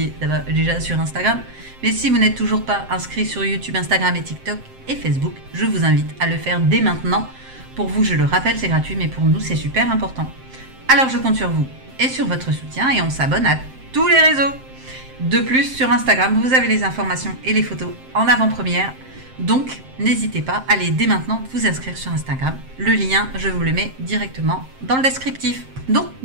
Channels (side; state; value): left; late; 7.6 ms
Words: déjà sur Instagram. Mais si vous n'êtes toujours pas inscrit sur YouTube, Instagram et TikTok et Facebook, je vous invite à le faire dès maintenant. Pour vous, je le rappelle, c'est gratuit, mais pour nous, c'est super important. Alors je compte sur vous et sur votre soutien et on s'abonne à tous les réseaux. De plus, sur Instagram, vous avez les informations et les photos en avant-première. Donc, n'hésitez pas, allez dès maintenant vous inscrire sur Instagram. Le lien, je vous le mets directement dans le descriptif. Donc,